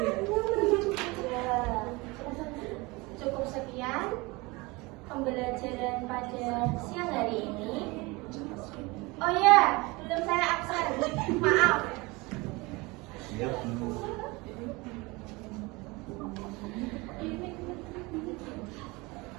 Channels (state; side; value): quieter; left; 24.3 dB